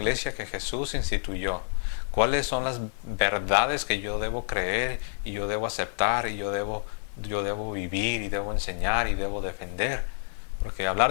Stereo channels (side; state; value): right; silent; 59 dB below the other